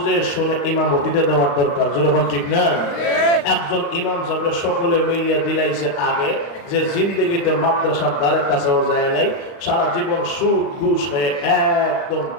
শুনে ইমামতিতে দেওয়ার দরকার। যখন ঠিক না, একজন ইমাম সাহেব সকলে মিলিয়ে দিলাইছে আগে যে জিন্দগিতে মাদ্রাসার দ্বারে কাছেও যায় নাই, সারা জীবন সুদ ঘুষ হয়ে একদম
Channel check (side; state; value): right; late; 36 ms